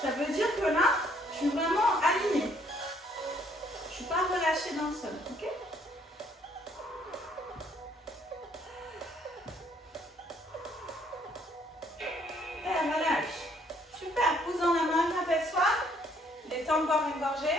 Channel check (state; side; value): normal; both; correlation 0.65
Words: Ça veut dire que là, je suis vraiment alignée. Je ne suis pas relâchée dans le sol. Ok? Et relâche. Super. Pousse dans la main, apaise-toi. Détends boire une